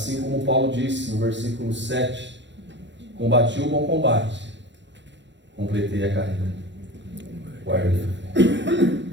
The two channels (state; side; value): late; left; 0.53 ms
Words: como Paulo disse no versículo 7, combati o bom combate, completei a carreira, guardei a fé.